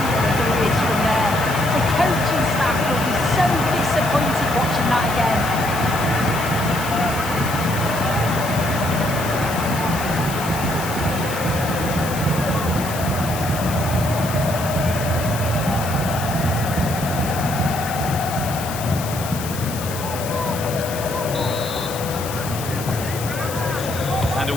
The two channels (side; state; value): left; noise; hiss, 10 dB below the sound